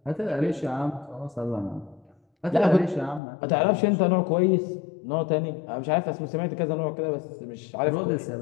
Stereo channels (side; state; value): right; drops out; at 3.2 s